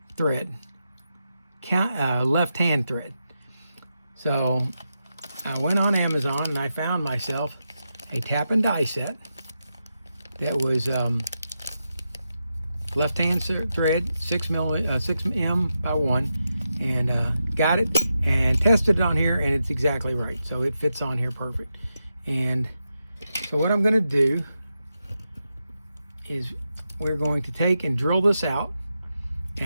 thread, left-hand thread. So I went on Amazon and I found myself a tap and die set that was left-hand thread, 6M by 1, and got it and tested it on here, and it's exactly right. So it fits on here perfect. And so what I'm going to do is we're going to take and drill this out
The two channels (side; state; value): both; inverted; correlation -0.87